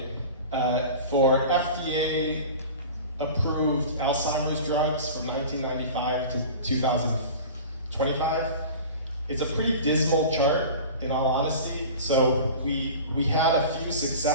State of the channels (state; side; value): inverted; both; correlation -0.36